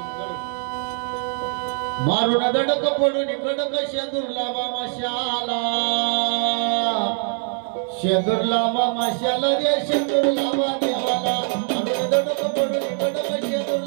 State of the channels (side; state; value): left; silent; 64 dB below the other